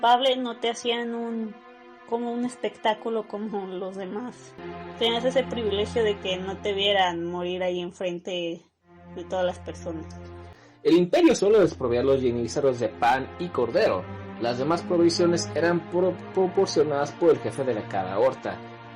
no te hacían como un espectáculo como los demás. Tenías ese privilegio de que no te vieran morir ahí enfrente de todas las personas. El imperio solo desprovía a los yenízaros de pan y cordero. Las demás provisiones eran proporcionadas por el jefe de cada horta.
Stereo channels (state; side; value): identical; both; correlation 1.00